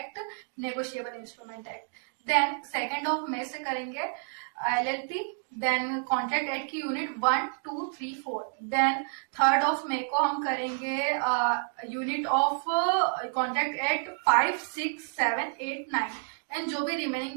negotiable instrument act, then 2 मई से करेंगे LLP, देन कॉन्ट्रैक्ट एक्ट की यूनिट 1, 2, 3, 4, देन 3 मई को हम करेंगे unit of contract act 5, 6, 7, 8, 9 and जो भी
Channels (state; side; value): silent; left; 58 dB below the other